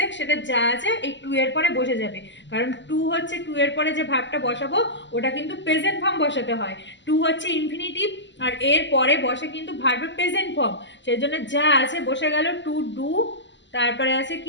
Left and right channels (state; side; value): late; right; 0.53 ms